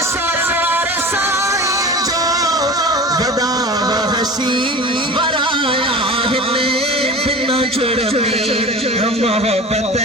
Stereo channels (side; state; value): both; normal; correlation 0.35